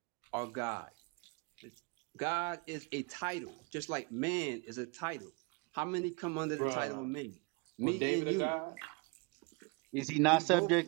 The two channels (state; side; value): quieter; left; 30.7 dB